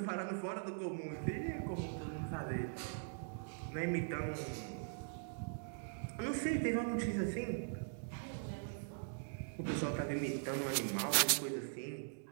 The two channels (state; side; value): silent; left; digital silence